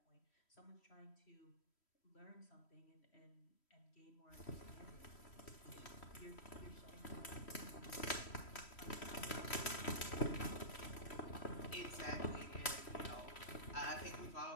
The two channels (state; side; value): late; right; 3.1 ms